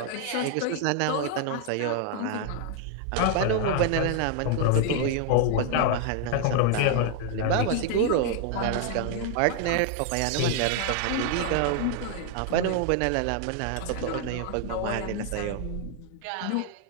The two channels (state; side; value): different; both; correlation 0.00